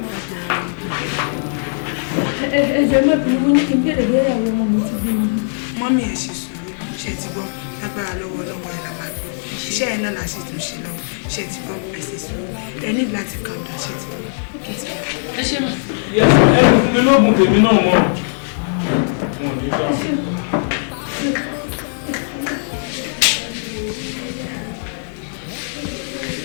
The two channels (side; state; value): right; silent; 66 dB below the other